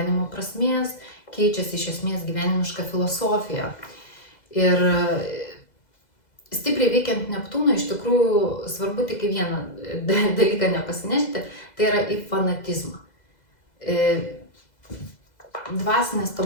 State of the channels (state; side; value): late; right; 2.0 ms